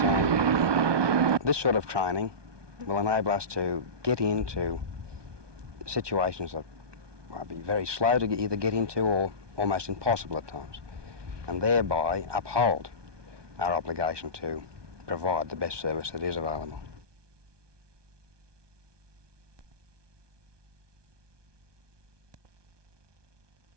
this sort of training will enable us to get into situations that might be very slow to either get into or almost impossible at times, and thereby uphold our obligation to provide the best service that is available.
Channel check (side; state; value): left; late; 1.2 ms